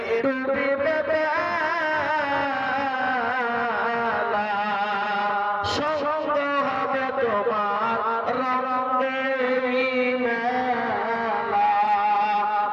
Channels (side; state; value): both; identical; correlation 1.00